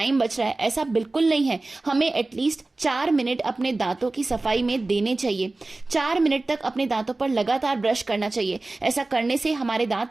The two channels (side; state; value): left; quieter; 3.1 dB